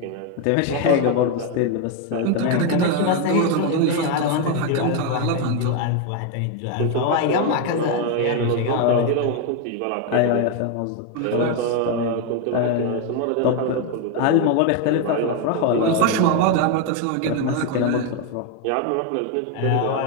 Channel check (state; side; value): different; both; correlation 0.01